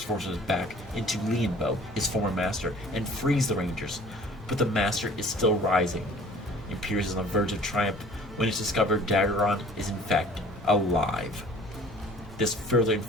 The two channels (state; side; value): normal; both; correlation 0.50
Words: back into Lianbo, his former master, and frees the Rangers, but the Master is still rising. Imperious is on the verge of triumph when it's discovered Dagron is in fact alive. This further